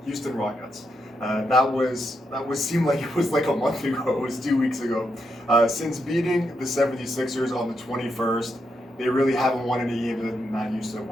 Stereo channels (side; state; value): both; normal; correlation 0.82